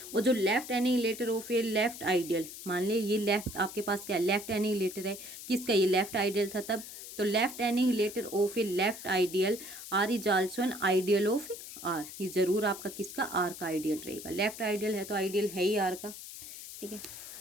वो जो left annihilator of a left ideal, मान ले ये लेफ्ट आपके पास क्या लेफ्ट एनिहिलेटर है, किसका, ये लेफ्ट आइडियल था तब, तो left annihilator of a left ideal R is also an ideal of R, ये जरूर आपका किसका, आर का आइडियल रहेगा। लेफ्ट आइडियल है तो आइडियल है ही आर का। ठीक है,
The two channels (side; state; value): left; noise; hiss, 12 dB below the sound